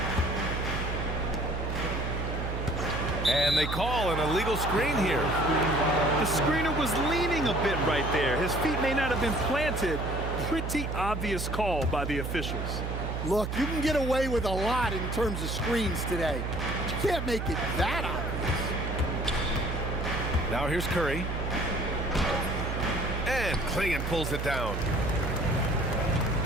And they call an illegal screen here. The screener was leaning a bit right there. His feet may not have been planted. Pretty obvious call by the officials. Look, you can get away with a lot in terms of screens today. But you can't make it that obvious. Now here's Curry. And Clingan pulls it down.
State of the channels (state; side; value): noise; right; hum, 3 dB below the sound